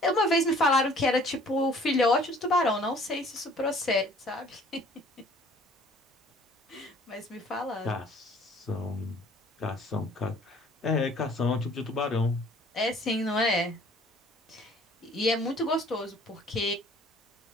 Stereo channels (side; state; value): both; normal; correlation 0.54